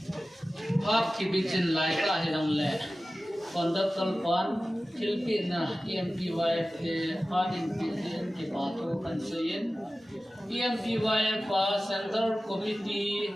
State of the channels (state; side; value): normal; both; correlation 0.95